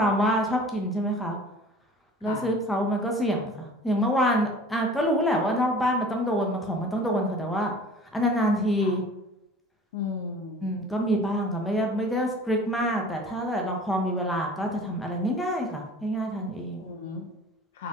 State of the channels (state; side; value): normal; both; correlation 0.45